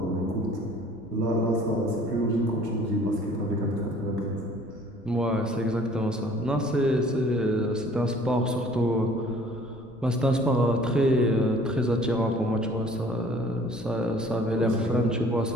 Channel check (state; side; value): noise; left; rumble, 23 dB below the sound